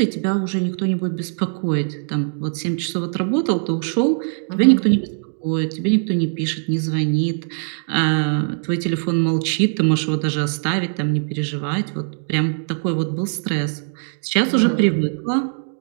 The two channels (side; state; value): left; silent; 65 dB below the other